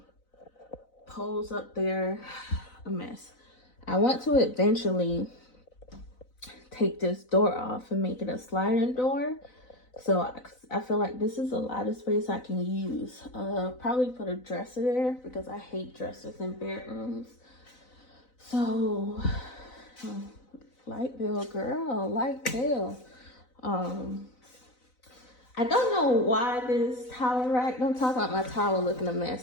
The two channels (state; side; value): late; right; 4.0 ms